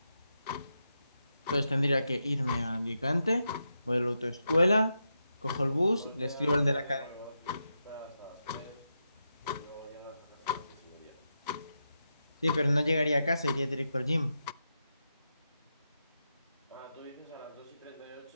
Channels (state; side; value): inverted; both; correlation -0.87